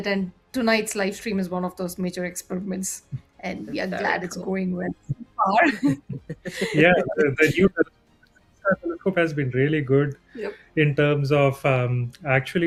and tonight's live stream is one of those major experiments, and we are glad it's going well so far. Yeah, the new telescope has been really good Yep. in terms of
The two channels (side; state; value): both; identical; correlation 1.00